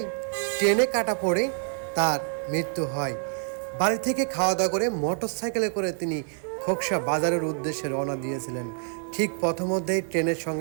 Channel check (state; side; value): silent; left; 55 dB below the other